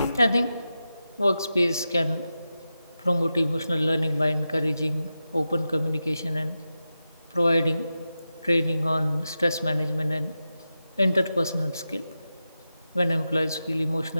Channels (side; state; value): both; inverted; correlation -0.91